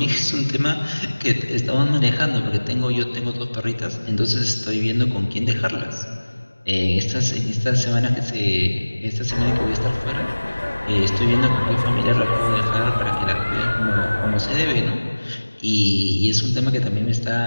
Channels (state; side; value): inverted; both; correlation -1.00